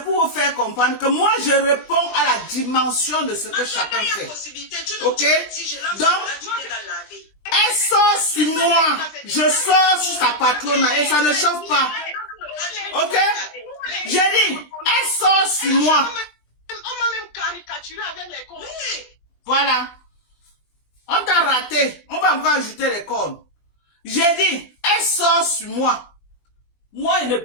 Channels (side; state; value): right; late; 20 ms